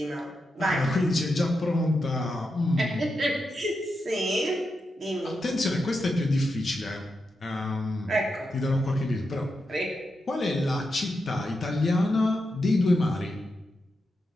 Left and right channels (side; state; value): both; normal; correlation 0.87